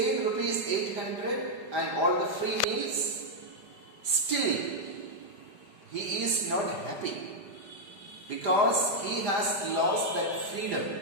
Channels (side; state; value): left; late; 4.8 ms